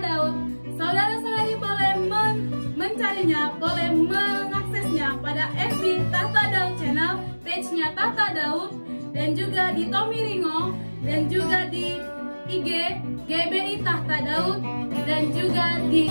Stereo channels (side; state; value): both; inverted; correlation -1.00